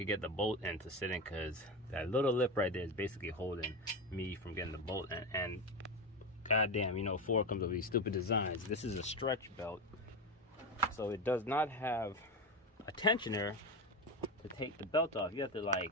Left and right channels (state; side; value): normal; both; correlation 0.18